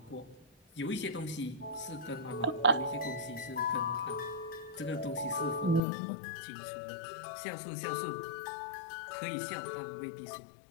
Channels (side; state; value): right; drops out; at 5.8 s